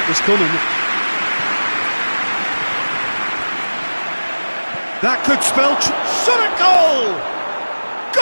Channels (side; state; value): both; inverted; correlation -1.00